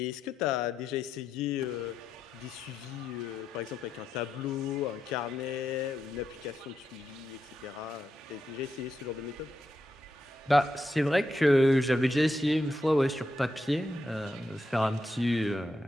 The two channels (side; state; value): both; normal; correlation 0.84